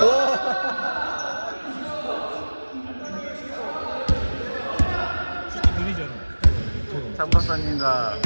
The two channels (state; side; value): inverted; both; correlation -1.00